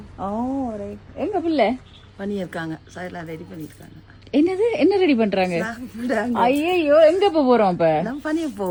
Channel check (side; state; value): both; identical; correlation 1.00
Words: ஓ எங்க பிள்ளை பண்ணியிருக்காங்க, சைட்ல ரெடி பண்ணிருக்காங்க. என்னது? என்ன ரெடி பண்றாங்க? ஐயோ, எங்க போறோம் இப்ப? நான் பண்ணிய